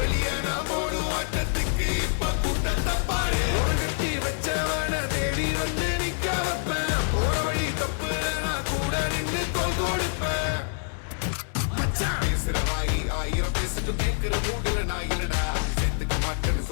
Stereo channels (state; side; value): silent; right; 61 dB below the other